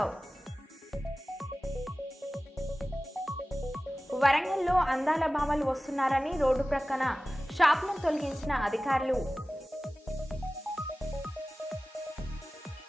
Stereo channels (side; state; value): both; normal; correlation 0.97